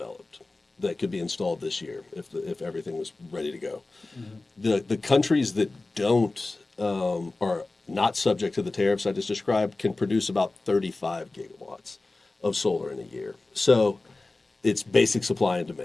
that could be installed this year if everything was ready to go. Mm-hmm. The countries that don't are not subject to the tariffs I just described can produce about 35 gigawatts of solar in a year. So it's basic supply and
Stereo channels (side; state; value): right; quieter; 3.2 dB